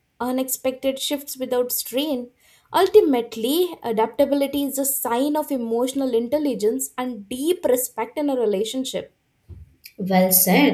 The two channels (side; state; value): both; identical; correlation 1.00